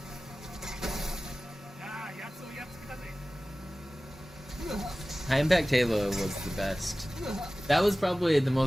High Impact Halo was the best. That was probably the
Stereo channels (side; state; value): both; normal; correlation 0.97